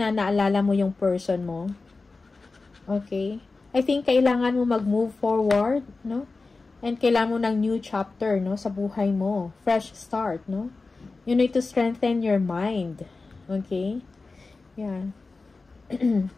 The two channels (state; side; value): quieter; right; 3.8 dB